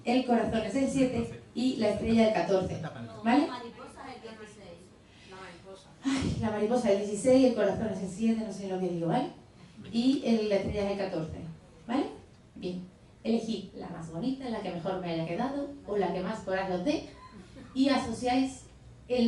el corazón es el 7 y la estrella el 14. ¿Vale? Ay, la mariposa es el 16, el corazón es el 7, no sé lo que digo, ¿vale? Y la estrella es el 14, ¿vale? Bien. Elegid la más bonita, la que mejor me haya quedado o la que más coraje os dé y asociáis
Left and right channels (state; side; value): identical; both; correlation 1.00